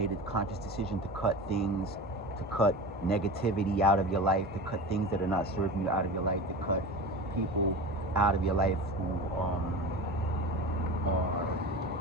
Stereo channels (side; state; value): both; normal; correlation 0.30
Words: a conscious decision to cut things, to cut negativity out of your life, to cut things that are not serving you out of your life, to cut people out of your life who are